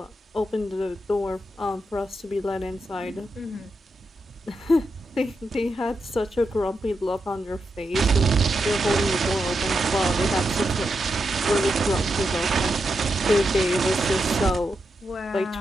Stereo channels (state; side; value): normal; both; correlation 0.86